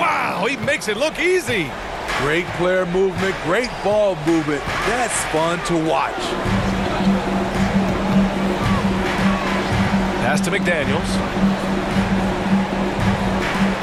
he makes it look easy. Great player movement, great ball movement. That's fun to watch. Pass to McDaniels.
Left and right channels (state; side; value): identical; both; correlation 1.00